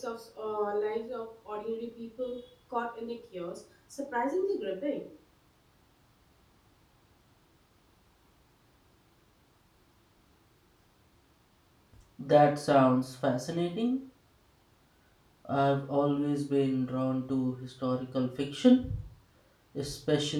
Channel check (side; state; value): both; identical; correlation 1.00